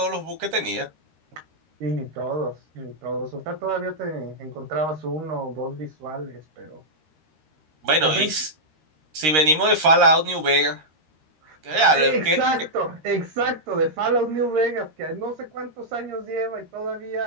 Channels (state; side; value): late; left; 13 ms